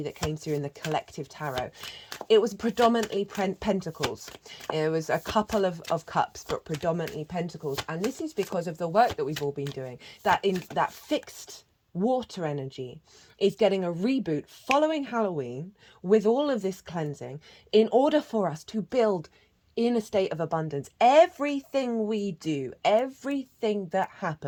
that came through in the collective tarot. It was predominantly pentacles. It was a couple of cups, but predominantly pentacles, and this is because of the work that we've all been doing, that in that fixed water energy is getting a reboot following Halloween with all of this cleansing in order for us to build in a state of abundance. Everything we do, everything that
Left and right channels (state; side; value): identical; both; correlation 1.00